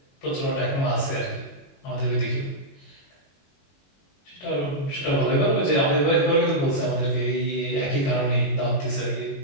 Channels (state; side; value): late; right; 21 ms